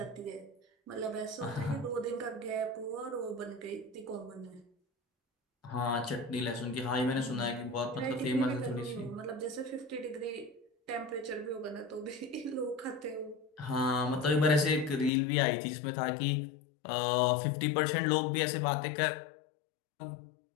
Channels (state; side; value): drops out; right; at 15.1 s